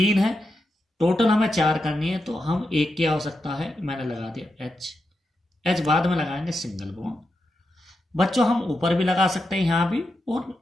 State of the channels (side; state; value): both; normal; correlation 0.87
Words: है। टोटल हमें 4 करनी है, तो हम 1 की आवश्यकता है। मैंने लगा दिया H बाद में लगाएंगे सिंगल बॉन्ड। बच्चों हम ऊपर भी लगा सकते हैं, यहाँ भी और